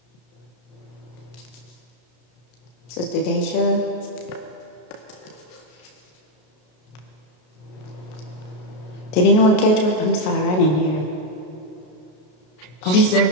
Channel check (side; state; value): right; late; 33 ms